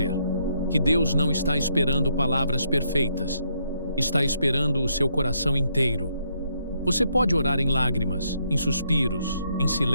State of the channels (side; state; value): both; inverted; correlation -0.75